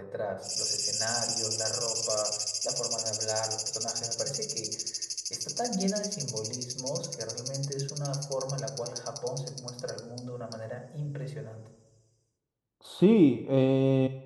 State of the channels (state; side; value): identical; both; correlation 1.00